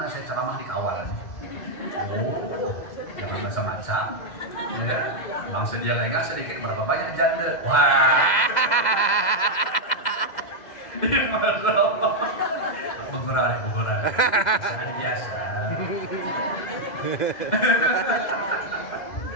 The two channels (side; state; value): right; late; 2.0 ms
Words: saya ceramah di kawalan. Oh, jangan macam-macam. Ya, bangsa dia lengah sedikit berapa banyak janda. Wah. Beberapa. Ada biasa.